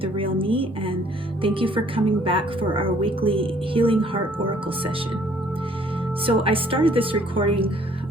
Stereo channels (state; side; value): normal; both; correlation 0.60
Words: real me, and thank you for coming back for our weekly Healing Heart Oracle session. So I started this recording